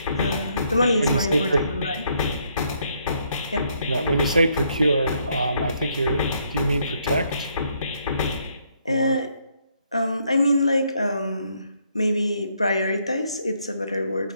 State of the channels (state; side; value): inverted; both; correlation -0.71